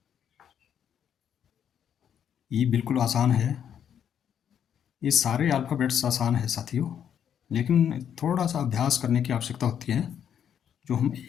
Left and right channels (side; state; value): right; quieter; 8.8 dB